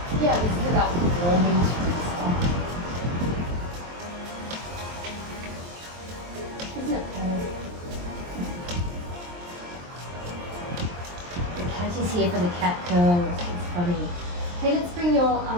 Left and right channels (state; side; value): late; left; 23 ms